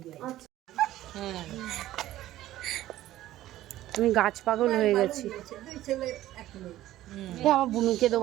আমি গাছ পাগল হয়ে গেছি। আমার বুনুকে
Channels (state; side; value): quieter; left; 14.5 dB